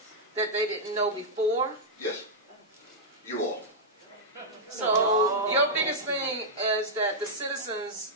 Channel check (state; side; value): normal; both; correlation -0.06